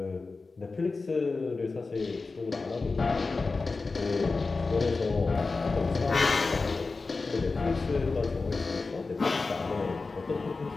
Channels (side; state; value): right; quieter; 3.9 dB